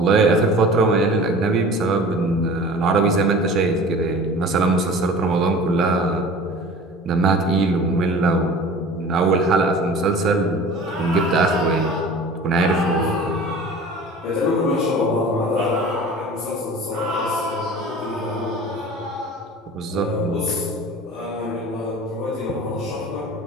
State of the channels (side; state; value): both; normal; correlation 0.41